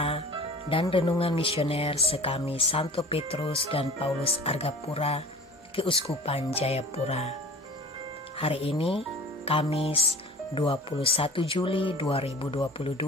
dan renungan misioner sekami Santo Petrus dan Paulus Argapura, Keuskupan Jayapura. Hari ini Kamis 21 Juli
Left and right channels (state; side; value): normal; both; correlation 0.42